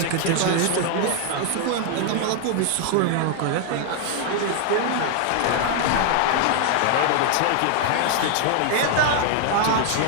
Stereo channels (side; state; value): both; different; correlation 0.00